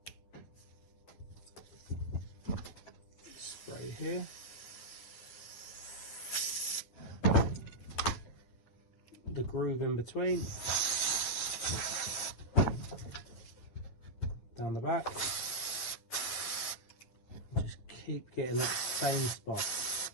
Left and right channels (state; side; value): late; right; 9.7 ms